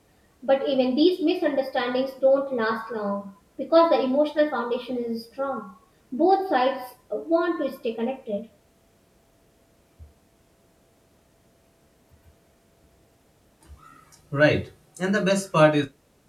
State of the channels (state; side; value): identical; both; correlation 1.00